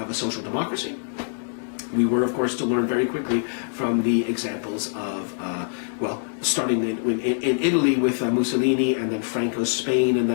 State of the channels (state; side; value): silent; right; digital silence